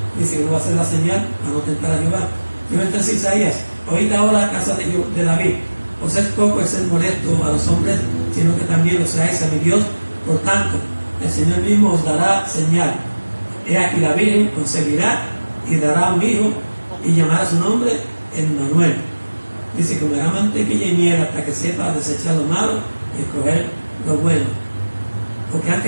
dice que no va a hacer la señal para no tentar a Jehová. Yo entonces Isaías, oíd ahora a casa de David, os es poco el ser molesto a los hombres, sino que también lo seáis a mi Dios. Por tanto, el Señor mismo os dará señal. He aquí la Virgen concebirá y dará un hijo y llamará su nombre Emmanuel. Dice, comerá mantequilla y miel hasta que sepa desechar lo malo y escoger lo bueno. Porque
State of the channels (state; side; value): inverted; both; correlation -1.00